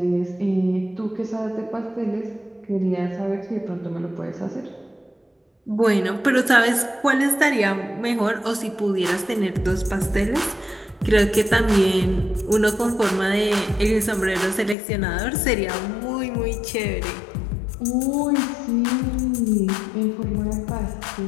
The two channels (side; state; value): right; drops out; at 14.8 s